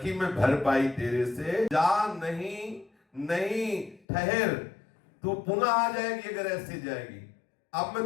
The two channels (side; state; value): right; drops out; at 4.0 s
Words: मैं भर पाई तेरे से। जा, नहीं नहीं ठहर, तू पुनः आ जाएगी अगर ऐसे जाएगी। अब